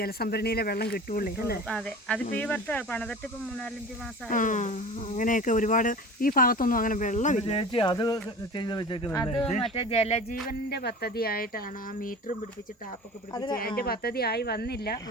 ജലസംഭരണിയിലെ വെള്ളം കിട്ടുള്ളൂ അല്ലേ. അതെ, അതിപ്പോ ഈ വർഷം പണിതിട്ട് ഇപ്പം 3-4 മാസം. അങ്ങനെയൊക്കെ ഒരുപാട് ഈ ഭാഗത്തൊന്നും അങ്ങനെ വെള്ളമില്ല. അത് മറ്റേ ജലജീവന്റെ പദ്ധതി ആയിട്ടാണ് ആ മീറ്ററും പിടിപ്പിച്ച് ടാപ്പൊക്കെ പിടിപ്പിച്ച്. അതിന്റെ പദ്ധതി ആയി വന്നില്ല.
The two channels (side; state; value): both; normal; correlation 0.37